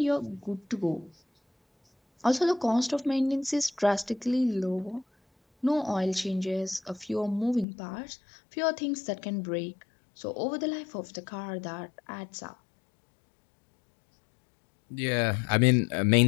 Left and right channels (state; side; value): drops out; right; at 7.7 s